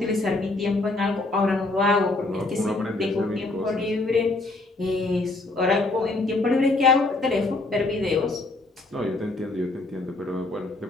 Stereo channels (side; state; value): right; quieter; 3.0 dB